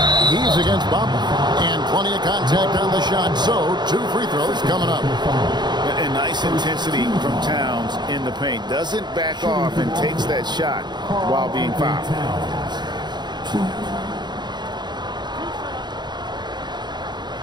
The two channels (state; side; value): late; left; 0.21 ms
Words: He's against Bamba. And plenty of contact on the shot. So 2 free throws coming up. And nice intensity from Towns in the paint. Doesn't back off and takes that shot while being fouled.